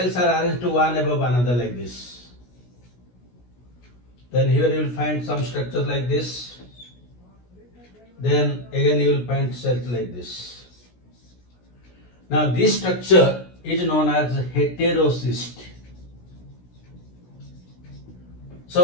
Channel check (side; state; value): right; late; 16 ms